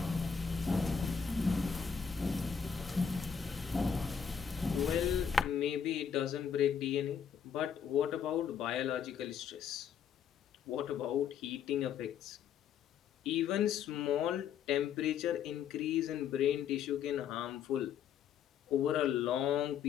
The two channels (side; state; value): right; quieter; 7.5 dB